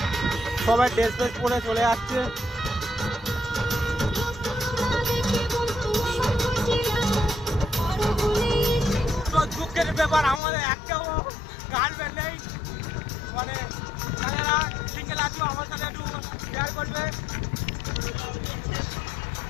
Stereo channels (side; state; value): right; drops out; at 10.4 s